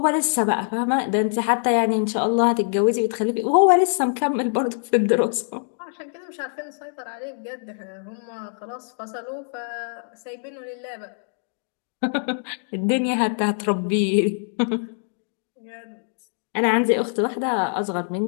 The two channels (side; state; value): right; silent; digital silence